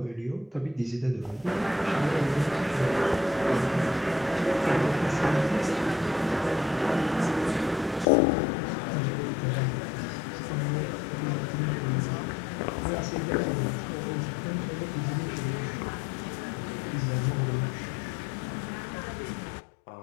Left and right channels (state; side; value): drops out; right; at 8.1 s